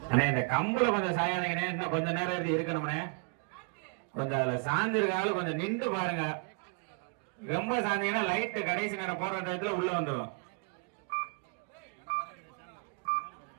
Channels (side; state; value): left; quieter; 36.4 dB